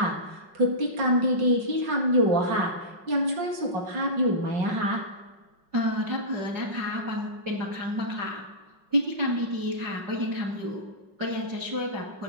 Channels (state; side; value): late; left; 5.4 ms